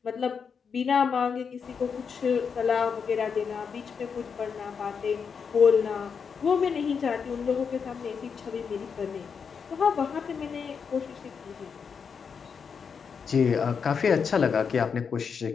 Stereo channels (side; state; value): right; quieter; 6.2 dB